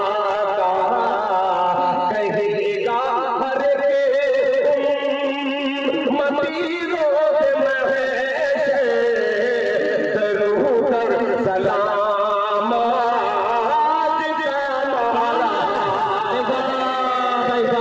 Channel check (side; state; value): both; identical; correlation 1.00